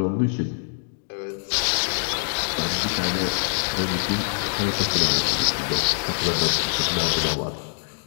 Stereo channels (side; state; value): right; silent; digital silence